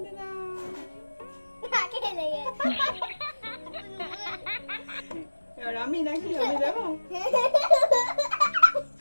দাও। এবার আমি নাকি আমি দেবো?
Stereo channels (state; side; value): inverted; both; correlation -1.00